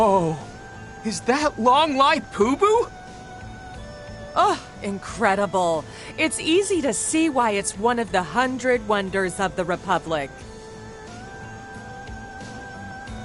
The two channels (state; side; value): identical; both; correlation 1.00